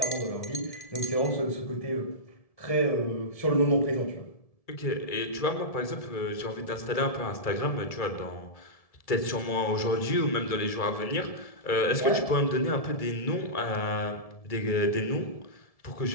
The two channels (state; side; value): late; right; 1.7 ms